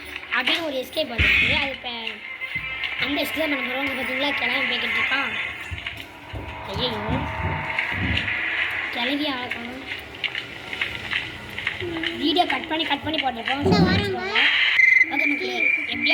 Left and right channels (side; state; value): both; identical; correlation 1.00